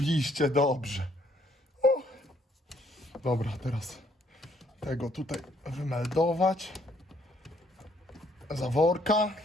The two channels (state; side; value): normal; both; correlation 0.67